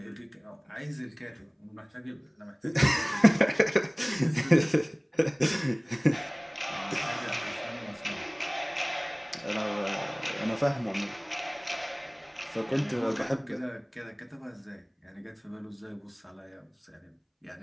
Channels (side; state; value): both; identical; correlation 1.00